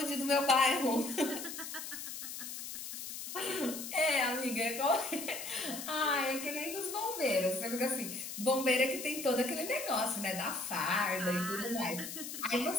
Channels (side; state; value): left; noise; hiss, 8 dB below the sound